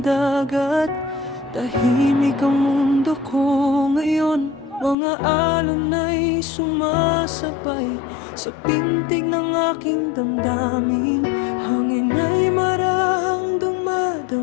dagat, tahimik ang mundo ko ngayon. Mga alon ay sumasabay sa pintig ng aking damdamin. Hangin ay marahang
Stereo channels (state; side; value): drops out; right; at 5.0 s